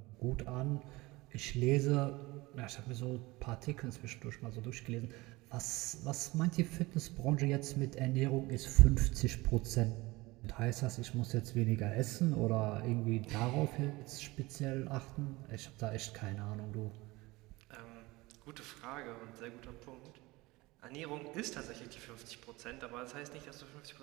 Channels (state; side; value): quieter; left; 21.5 dB